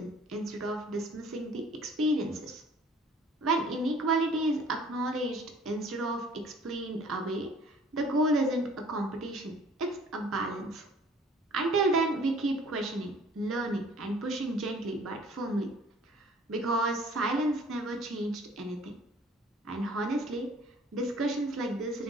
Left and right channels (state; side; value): normal; both; correlation 0.53